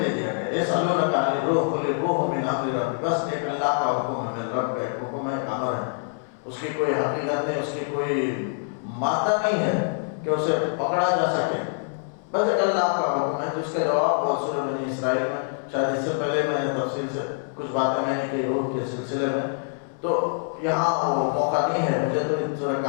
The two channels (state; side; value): silent; right; 62 dB below the other